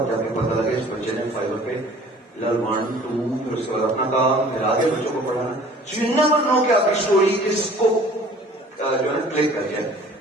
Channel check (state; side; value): normal; both; correlation 0.50